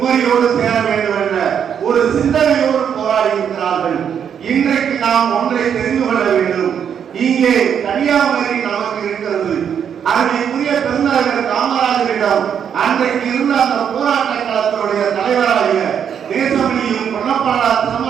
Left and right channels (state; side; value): quieter; left; 8.1 dB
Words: சேர வேண்டும் என்ற ஒரு சிந்தனையோடு போராடி இருக்கிறார்கள். இன்றைக்கு நாம் ஒன்றை தெரிந்து கொள்ள வேண்டும். இங்கே கன்னியாகுமரி நமக்கு இருக்கிறது. அருமைக்குரிய பெருந்தலைவர் காமராஜரிடம் அன்றைக்கு இருந்த அந்த போராட்ட களத்தினுடைய தலைவராகிய நேசமணியும் பொன்னப்படார்